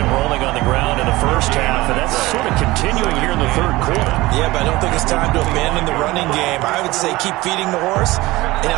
rolling on the ground in the first half, and that's sort of continuing here in the third quarter. Yeah, but I don't think it's time to abandon the running game. I would say keep feeding the horse, and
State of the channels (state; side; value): quieter; left; 19.6 dB